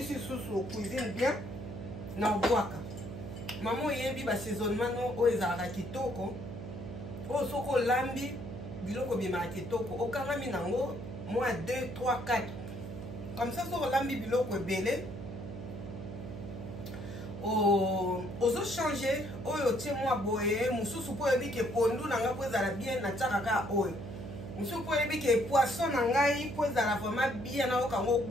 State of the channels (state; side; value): noise; right; hum, 9 dB below the sound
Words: susu cuisine bien na obwaka mama oyebi basaisonnement oyo ezalaka kitoko oyo soki olambi biloko bimaka kitoko okangami nango mwa 2 3 4 comme ça soki olambi biloko ebele ozochange oyo otie mwa boye mosusu mpo oyebi ke pondu na ngai mpo ezala bien natiaka kaka oyo mosusu mpo oyebi ke poisson na ngai mpo ezala vraiment bien nayokango